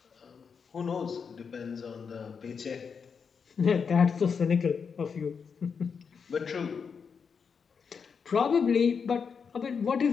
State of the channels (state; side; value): quieter; right; 6.1 dB